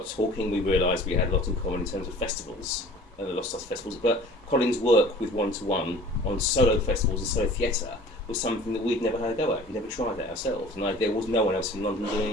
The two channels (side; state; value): both; normal; correlation 0.46